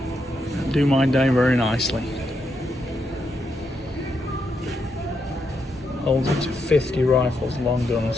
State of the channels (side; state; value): both; normal; correlation 0.81